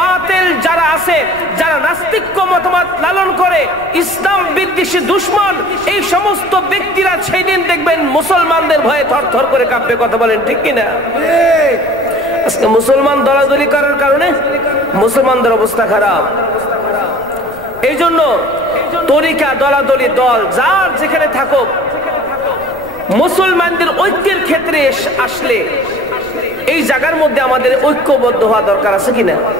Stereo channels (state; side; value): noise; left; rumble, 22 dB below the sound